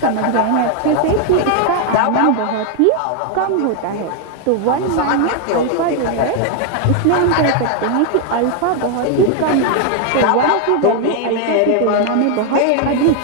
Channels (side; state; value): both; different; correlation 0.00